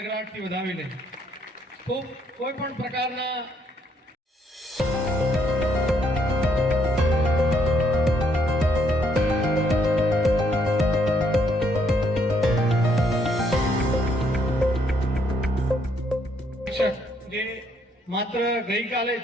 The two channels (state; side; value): normal; both; correlation 0.71